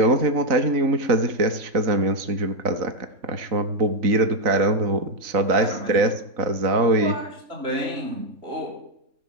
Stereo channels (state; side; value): late; left; 3.9 ms